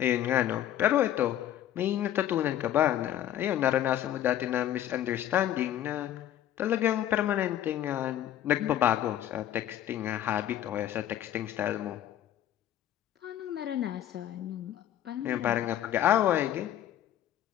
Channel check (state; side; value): quieter; right; 11.7 dB